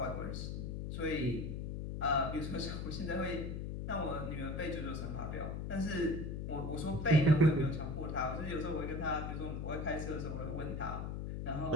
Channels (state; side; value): noise; left; hum, 4 dB below the sound